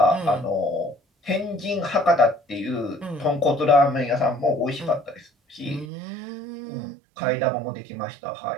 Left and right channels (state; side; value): drops out; left; at 5.9 s